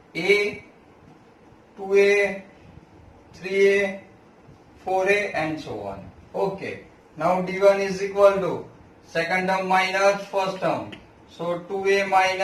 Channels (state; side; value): identical; both; correlation 1.00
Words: A, 2A, 3A, 4A and so on. Okay. Now D1 is equal to second term minus first term. So 2A